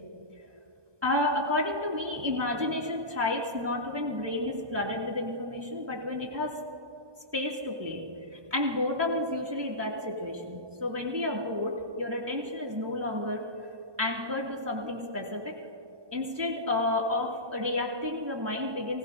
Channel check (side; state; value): left; late; 1.2 ms